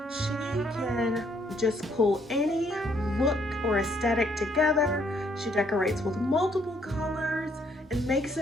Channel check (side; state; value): both; normal; correlation 0.68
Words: She can just pull any look or aesthetic together. She decorates with multiple colors and makes